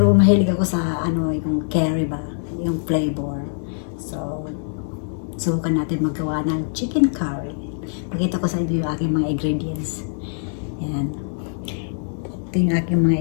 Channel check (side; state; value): right; silent; digital silence